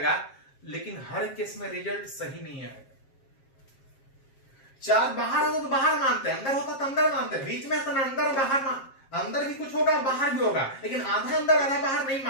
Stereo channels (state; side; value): late; right; 7.5 ms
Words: लेकिन हर केस में रिजल्ट सही नहीं आएगा। चार बाहर होता तो बाहर मानते हैं, अंदर होता तो अंदर मानते हैं, बीच में तो अंदर बाहर अंदर भी कुछ होगा बाहर भी होगा, लेकिन आधा अंदर आधा बाहर नहीं